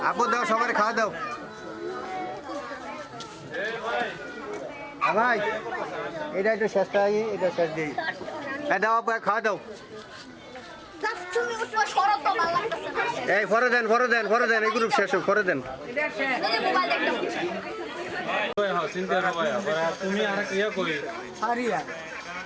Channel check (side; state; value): both; identical; correlation 1.00